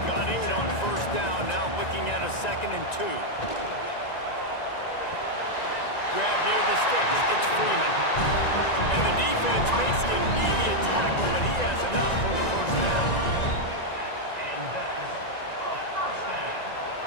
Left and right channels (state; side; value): late; right; 1.9 ms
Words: Got 8 on 1st down, now looking at a 2nd and 2. grab near the sticks. It's Freeman. And the defense makes the immediate tackle, but he has enough for the first down. And that is a first down.